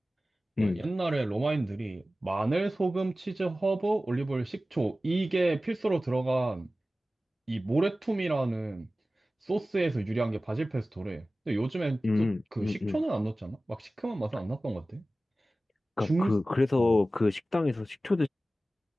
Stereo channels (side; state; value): both; normal; correlation 0.96